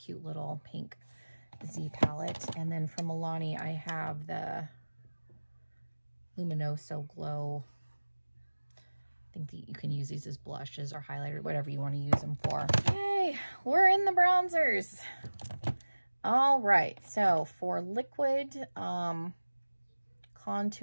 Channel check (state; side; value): inverted; both; correlation -1.00